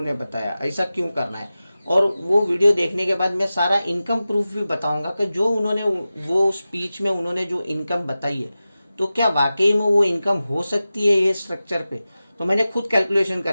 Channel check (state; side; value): inverted; both; correlation -0.95